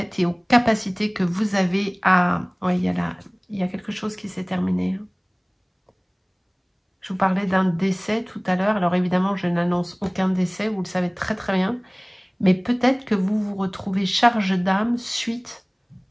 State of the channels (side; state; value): both; identical; correlation 1.00